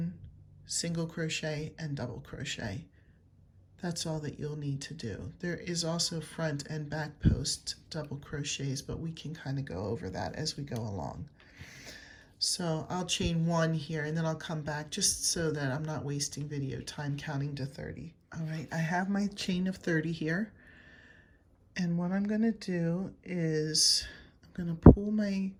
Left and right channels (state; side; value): identical; both; correlation 1.00